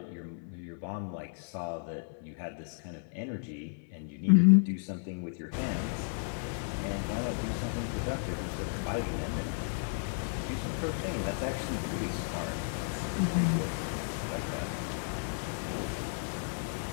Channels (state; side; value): silent; right; 56 dB below the other